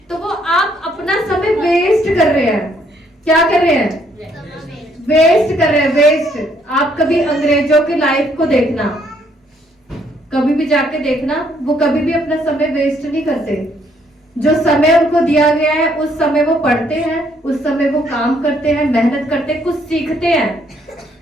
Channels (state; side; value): normal; both; correlation 0.68